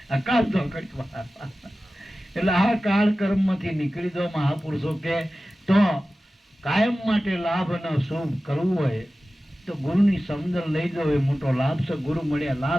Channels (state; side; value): normal; both; correlation 0.95